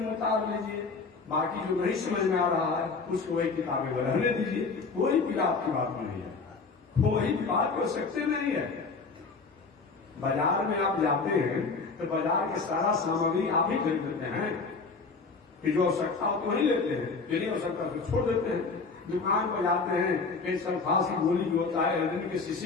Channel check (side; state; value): right; quieter; 4.4 dB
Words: उतार लीजिए। बाकी जो नहीं समझ में आ रहा है उसको वही किताबें में रहने दीजिए। कोई पीड़ा आपकी बात में नहीं है, कोई बात हो सकते नहीं है। बाजार में आप जाते हैं तो बाजार के सारा सामग्री आप ही खरीद लेते हैं, कि जो आवश्यकता हो तो वही लेते हैं, जो नहीं आवश्यकता तो छोड़ देते हैं। दुकान पर जाते हैं, कहीं सल्फास की गोली भी होता है, हृदय के